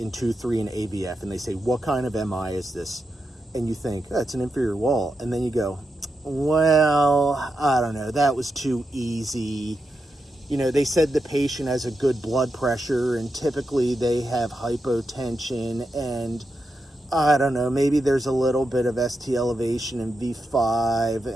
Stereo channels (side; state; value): both; normal; correlation 0.87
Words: 2-3 and AVF, and they say, what kind of MI is this? And you think, oh, it's an inferior wall. And then you go, well, I don't know, that was too easy. They said the patient has a good blood pressure, and typically they have hypotension, and I don't know, maybe there's a little bit of ST elevation in V5.